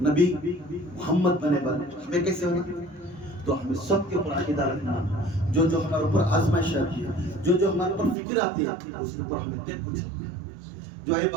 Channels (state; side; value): drops out; left; at 8.2 s